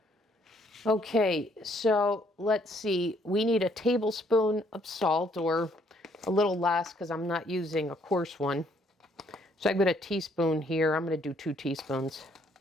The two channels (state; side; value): normal; both; correlation 0.67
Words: Okay, so let's see. We need a tablespoon of salt, or a little less because I'm not using a coarse one. So I've got a teaspoon here. I'm going to do 2 teaspoons,